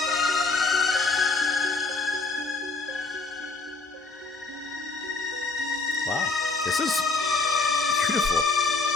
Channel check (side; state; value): right; quieter; 3.7 dB